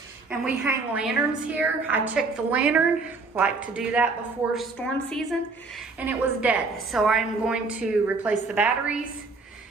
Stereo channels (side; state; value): left; quieter; 4.0 dB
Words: and we hang lanterns here. I checked the lantern, like to do that before storm season, and it was dead. So I'm going to replace the batteries